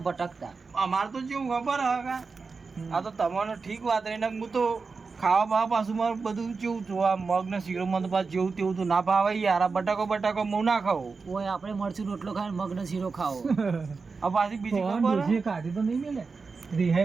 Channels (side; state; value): left; quieter; 4.6 dB